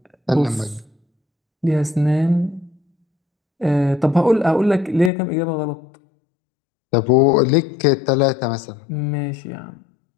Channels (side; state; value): right; drops out; at 5.1 s